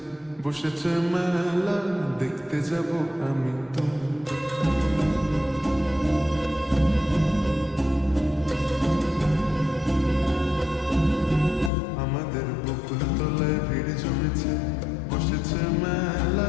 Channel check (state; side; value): drops out; right; at 11.7 s